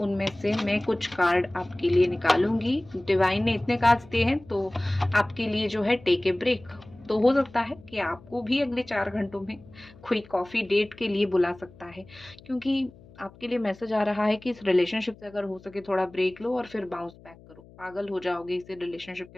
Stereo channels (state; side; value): noise; left; hum, 23 dB below the sound